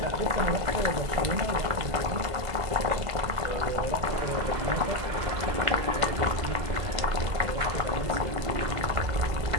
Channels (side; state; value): left; late; 2.0 ms